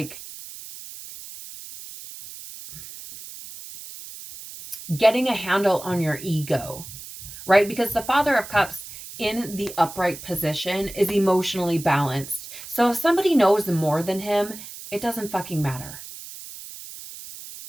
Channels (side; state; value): right; noise; hiss, 13 dB below the sound